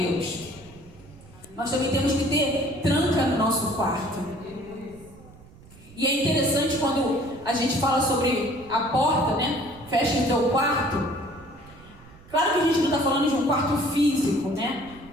Nós também temos que ter tranca no nosso quarto. E é interessante quando a gente fala sobre a porta, né? Fecha o teu quarto. Claro que a gente não está falando de um quarto físico, né?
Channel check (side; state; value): right; noise; rumble, 22 dB below the sound